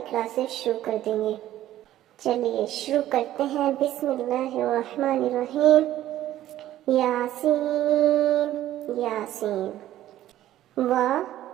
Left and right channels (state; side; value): quieter; left; 13.4 dB